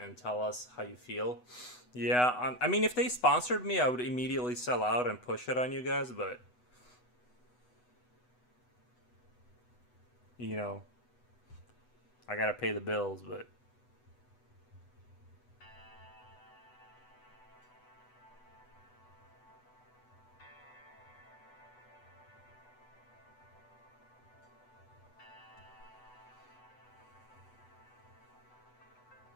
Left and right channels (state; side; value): late; right; 8.1 ms